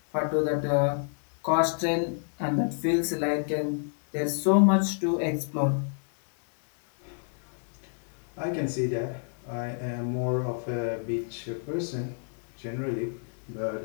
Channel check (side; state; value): right; silent; digital silence